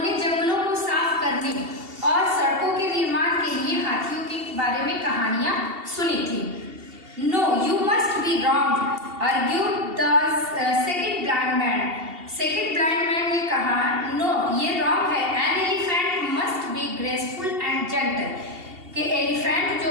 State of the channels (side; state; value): left; late; 2.7 ms